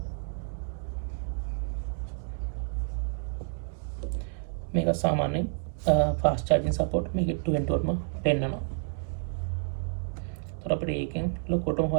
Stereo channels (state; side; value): silent; left; digital silence